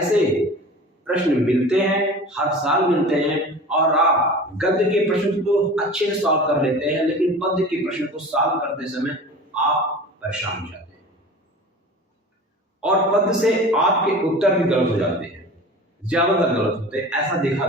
प्रश्न मिलते हैं, हर साल मिलते हैं, और आप गद्य के प्रश्न को अच्छे से सॉल्व कर लेते हैं, लेकिन पद्य के प्रश्न को सॉल्व करते समय आप परेशान हो जाते हैं और पद्य से आपके उत्तर भी गलत हो जाते हैं, ज्यादातर गलत होते हैं, ऐसा देखा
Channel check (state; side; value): normal; both; correlation 0.38